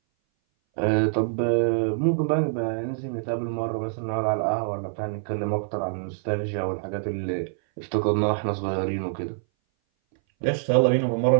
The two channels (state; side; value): silent; left; 59 dB below the other